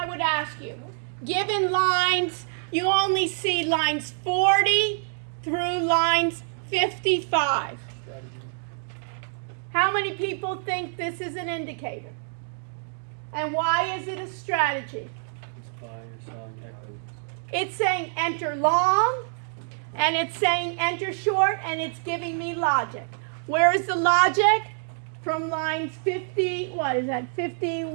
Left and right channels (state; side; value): silent; left; digital silence